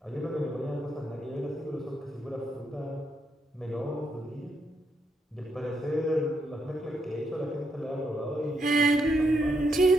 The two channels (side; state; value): both; normal; correlation 0.79